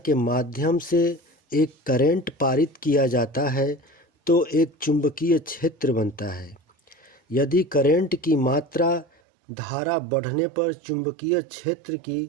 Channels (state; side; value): drops out; left; at 9.1 s